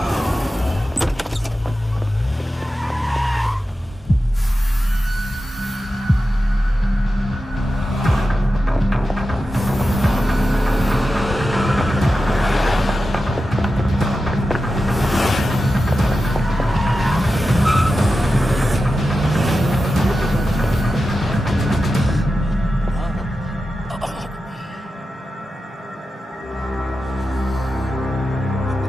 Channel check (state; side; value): normal; both; correlation 0.92